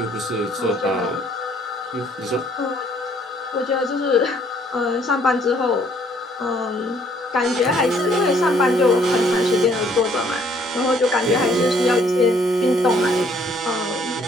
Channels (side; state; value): both; normal; correlation 0.63